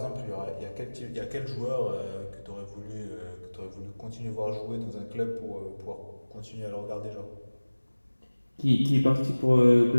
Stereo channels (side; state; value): both; inverted; correlation -1.00